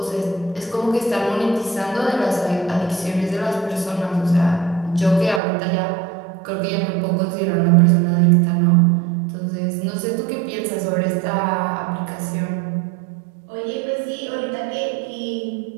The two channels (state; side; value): drops out; left; at 5.4 s